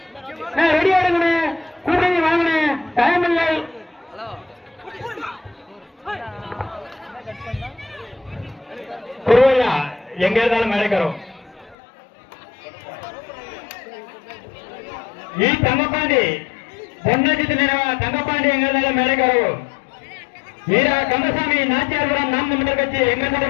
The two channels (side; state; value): right; drops out; at 11.8 s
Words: ரெடியா இருங்க. கூட்டணி வாங்கின டைம் இல்லை. குருவையா எங்க இருந்தாலும் மேடைக்கிறோம். ಈ ತಂಗಪಾಂಡಿ பொன்னஜித்து நினைவா தங்கப்பாண்டி எங்க இருந்தாலும் மேடைக்கிறோம். வீரா கந்தசாமி நாச்சியார்புரம் நாம் தமிழர் கட்சி எங்க